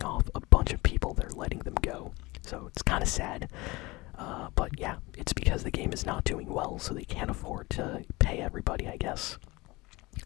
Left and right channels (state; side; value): quieter; right; 22.3 dB